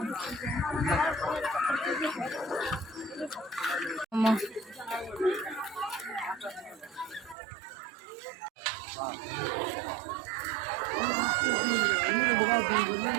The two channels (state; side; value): drops out; left; at 7.4 s